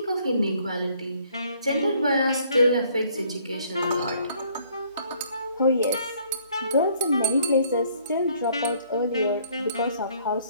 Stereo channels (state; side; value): inverted; both; correlation -0.62